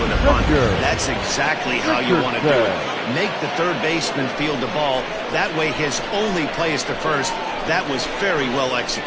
with a bunt, that's exactly how you want to do it. Make the third baseman field the ball. That way his only play is to first. That was very well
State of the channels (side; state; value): both; identical; correlation 1.00